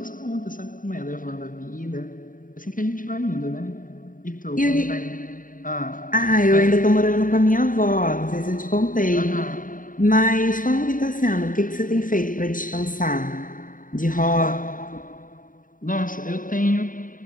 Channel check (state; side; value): late; right; 0.39 ms